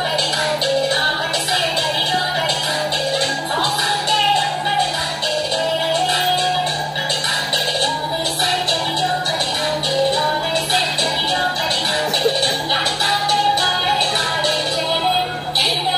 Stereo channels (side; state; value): both; identical; correlation 1.00